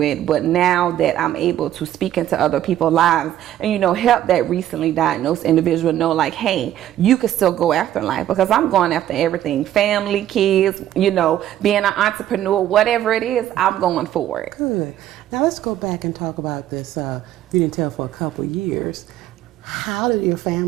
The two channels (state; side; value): quieter; left; 12.2 dB